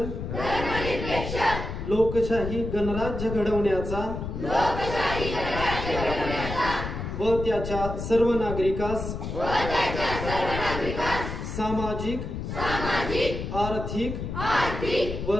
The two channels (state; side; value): noise; left; rumble, 6 dB below the sound